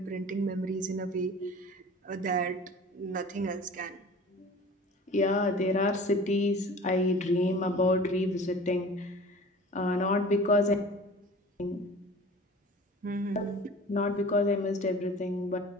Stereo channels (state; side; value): normal; both; correlation 0.42